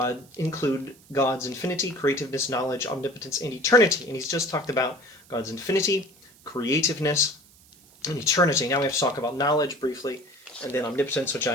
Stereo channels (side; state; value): right; noise; hiss, 26 dB below the sound